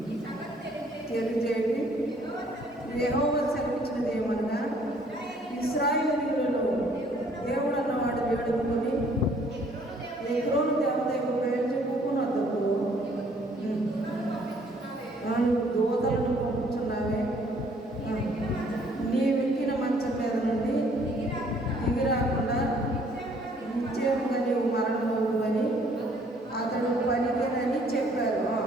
తెలియజేయండి. యెహోవా సెలవిచ్చినది ఏమనగా, ఇశ్రాయేలీయులలో దేవుడు అన్నవాడు వేడుకొని ఎగ్రోను దేవత యొక్క పేరు చెప్పుకున్నందుకు దూతలను పంపుతున్నావే, నీవెక్కిన మంచం మీద నుండి దిగిరాకుండా నిశ్చయముగా నీవు మరణమవు అని అతడు పలికినని చెప్పారు.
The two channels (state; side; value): normal; both; correlation 0.61